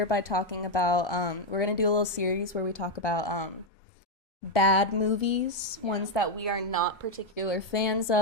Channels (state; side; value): normal; both; correlation 0.03